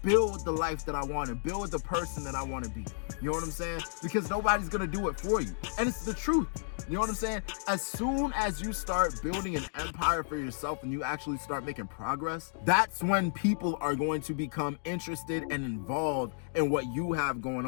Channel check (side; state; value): right; silent; digital silence